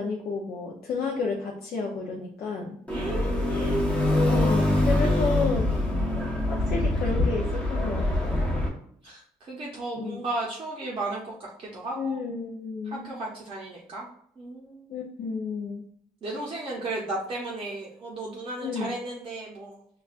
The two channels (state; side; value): normal; both; correlation 0.76